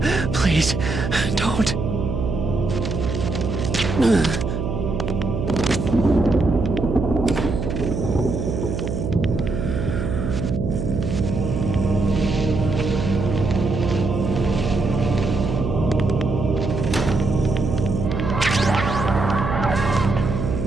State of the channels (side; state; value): right; noise; hum, 3 dB below the sound